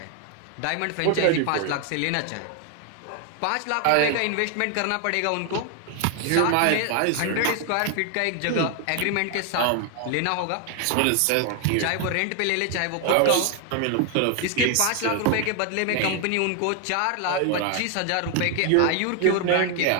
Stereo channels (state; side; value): different; both; correlation 0.01